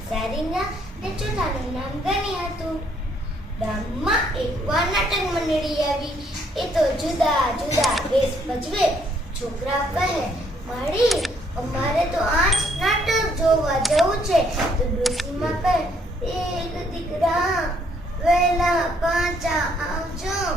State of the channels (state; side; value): normal; both; correlation 0.68